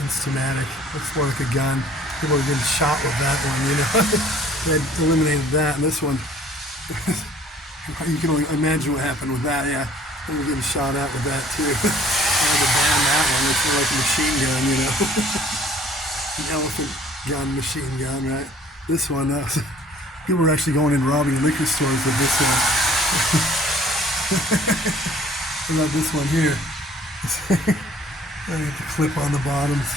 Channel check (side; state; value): both; normal; correlation 0.55